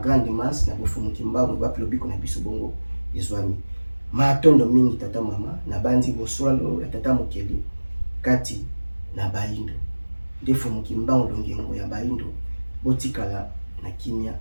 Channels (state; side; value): inverted; both; correlation -1.00